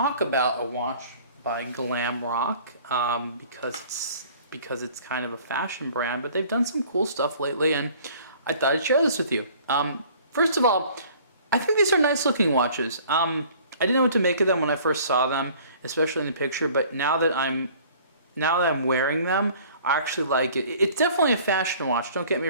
about a watch by Glam Rock because it's kind of a fashion brand, but they've done some cool stuff lately and I thought I'd share this with you. First of all, I think these are nice looking watches. I didn't know what to make of them when I first saw them, especially in the picture, but now that I'm wearing them, I actually like it. It's definitely a fashion watch, don't get me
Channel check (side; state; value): both; inverted; correlation -0.52